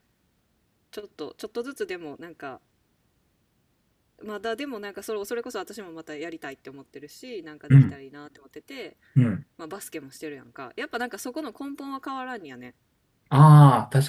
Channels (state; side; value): identical; both; correlation 1.00